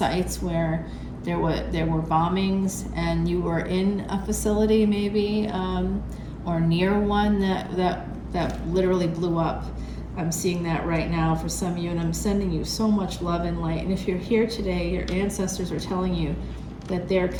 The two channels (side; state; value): both; identical; correlation 1.00